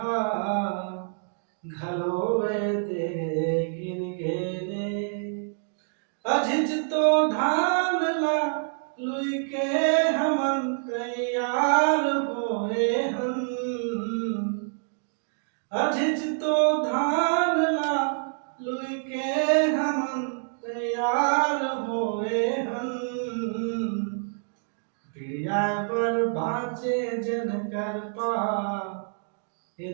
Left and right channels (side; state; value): left; silent; digital silence